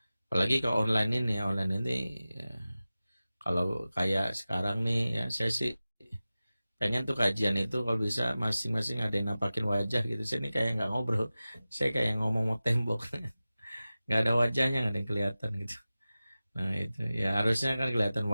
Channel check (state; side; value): inverted; both; correlation -0.96